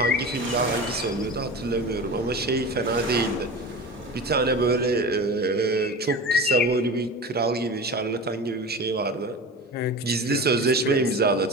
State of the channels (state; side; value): normal; both; correlation 0.31